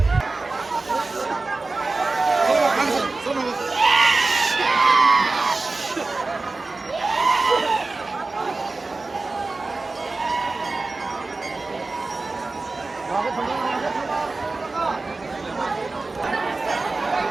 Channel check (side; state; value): left; quieter; 3.5 dB